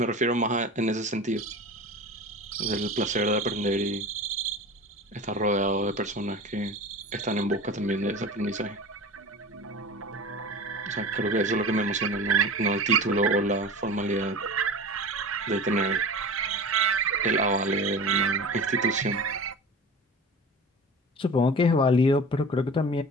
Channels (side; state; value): both; normal; correlation 0.34